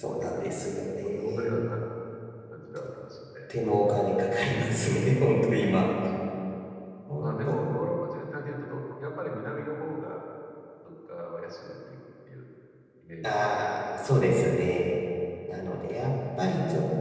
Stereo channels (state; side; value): identical; both; correlation 1.00